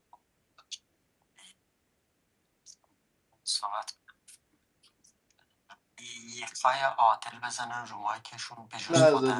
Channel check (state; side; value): identical; both; correlation 1.00